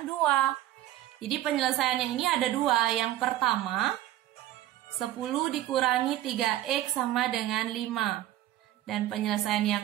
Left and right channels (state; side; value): quieter; left; 14.1 dB